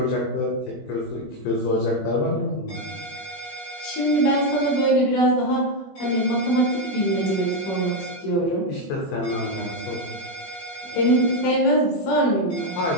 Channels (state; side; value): late; right; 21 ms